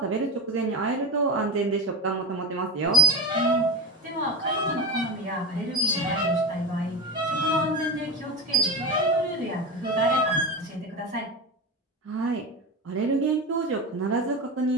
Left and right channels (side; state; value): both; normal; correlation 0.20